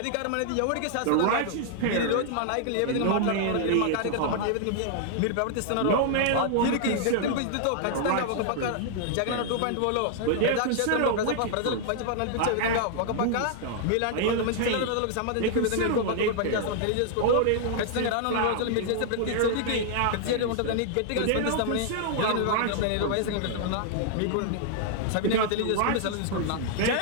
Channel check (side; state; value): both; different; correlation 0.00